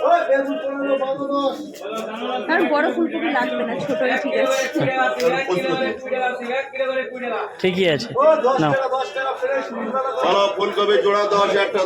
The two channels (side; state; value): both; identical; correlation 1.00